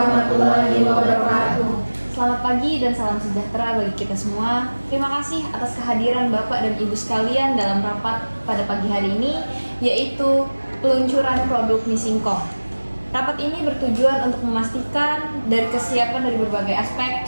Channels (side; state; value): both; inverted; correlation -1.00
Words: wabarakatuh. Selamat pagi dan salam sejahtera bagi kita semua. Terima kasih atas kehadiran Bapak dan Ibu sekalian dalam rapat pada pagi hari ini, yaitu peluncuran produk mie singkong. Rapat ini bertujuan untuk memastikan dari kesiapan dari berbagai aspek,